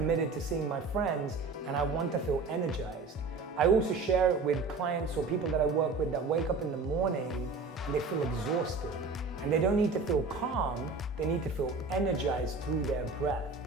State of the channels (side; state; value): left; quieter; 4.0 dB